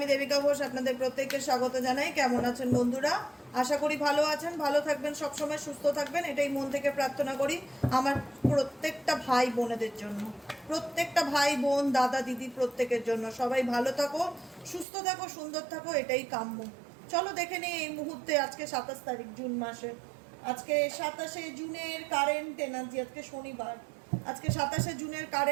দেবিকা ঘোষ আপনাদের প্রত্যেককে স্বাগত জানাই। কেমন আছেন বন্ধুরা? আশা করি ভালো আছেন, ভালো থাকবেন, সবসময় সুস্থ থাকবেন, এটাই মন থেকে প্রার্থনা করি আমার প্রত্যেকটা ভাই বোনেদের জন্য, প্রত্যেকটা ভাই বোন দাদা দিদি প্রত্যেকের জন্য। সবাই ভালো থাকো, সুস্থ থাকো, সুন্দর থাকো, এটাই কাম্য। চলো দেখে নিই এই মুহূর্তে, আজকে 27 তারিখ জুন মাসে, আজকে 27শে জুনের কারেন্ট এনার্জি, আজকে শনিবার, আজকে 27শে জুনের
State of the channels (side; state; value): left; drops out; at 14.9 s